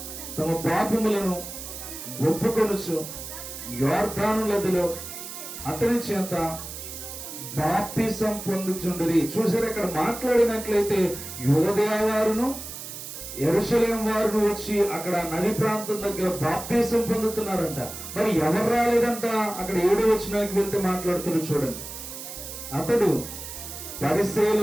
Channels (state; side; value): noise; right; hiss, 10 dB below the sound